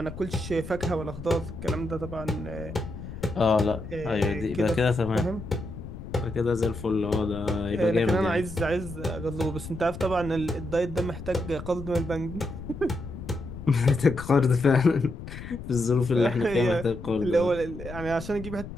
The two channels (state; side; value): noise; left; rumble, 11 dB below the sound